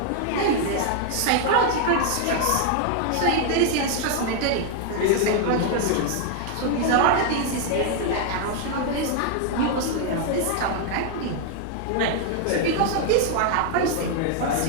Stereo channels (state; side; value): different; both; correlation 0.00